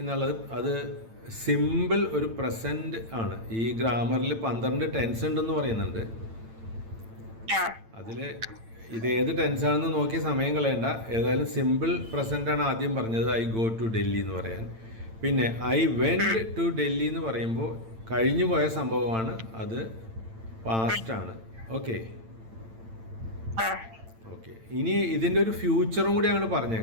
അത് സിമ്പിൾ ഒരു പ്രസന്റ് ആണ്. ഈ ഗ്രാമറിൽ 12 ടെൻസ് ഉണ്ടെന്ന് പറയുന്നുണ്ട്. അതിൽ ഇത് ഏത് ടെൻസാണെന്ന് നോക്കി സമയം കളയണ്ട. ഏതായാലും സിമ്പിൾ പ്രസന്റ് ആണ് ആദ്യം പറഞ്ഞത്, ഐ ഗോ ടു ഡൽഹി എന്ന് പറയാൻ. പിന്നെ ഐ വെൻറ്റ് ടു ഡൽഹി എന്ന് പറയുമ്പോൾ കഴിഞ്ഞു പോയ സംഭവമാണ്, അത് പാസ്റ്റ് ആണ്. ഓക്കെ. ഇനി ഇതിൻ്റെ ഒരു ഫ്യൂച്ചറും കൂടി അങ്ങോട്ട്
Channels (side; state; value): left; late; 8.9 ms